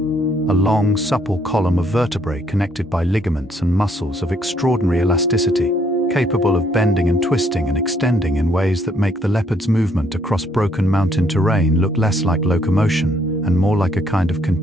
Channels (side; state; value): both; normal; correlation 0.68